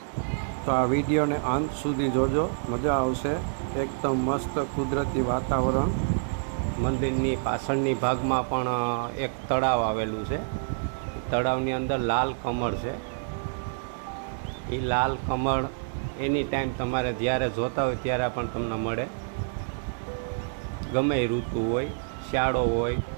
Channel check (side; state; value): left; silent; 60 dB below the other